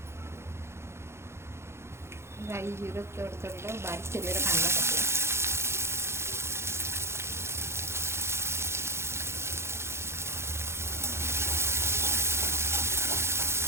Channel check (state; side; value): late; left; 0.13 ms